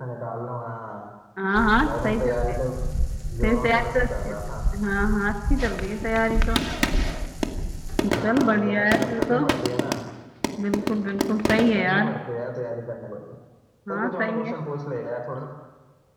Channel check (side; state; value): both; identical; correlation 1.00